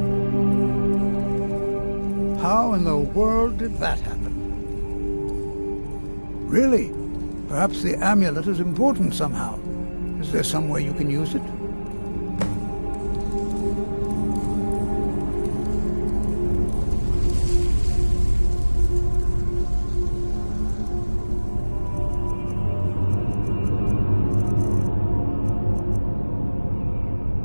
How in the world did that happen? Really? Perhaps the amulet is important somehow. Is there some way you can use it?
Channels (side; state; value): both; inverted; correlation -1.00